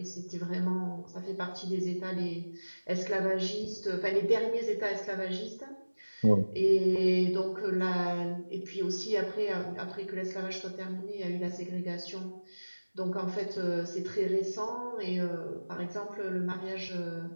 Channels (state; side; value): inverted; both; correlation -1.00